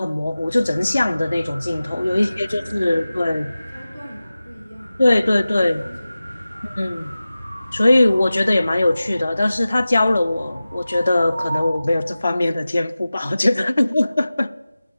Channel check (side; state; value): both; inverted; correlation -0.96